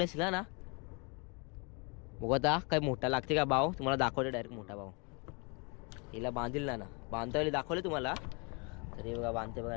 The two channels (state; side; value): quieter; right; 32.2 dB